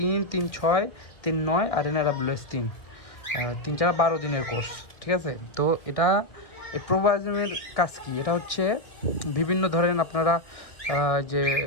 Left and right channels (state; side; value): late; right; 2.0 ms